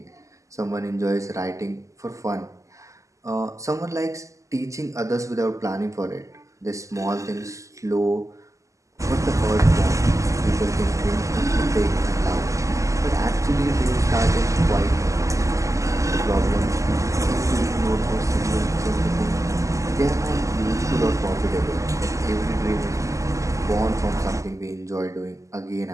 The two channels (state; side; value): late; left; 0.16 ms